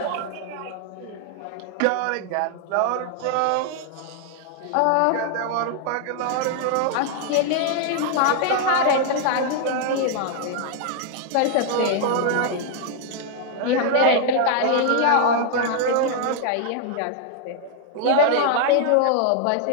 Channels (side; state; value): both; different; correlation 0.00